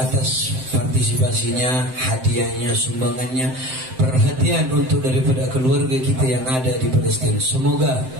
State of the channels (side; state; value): left; late; 7.7 ms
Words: partisipasinya, hadiahnya, sumbangannya, perhatian untuk daripada keluarga kita yang ada di Palestina. Semoga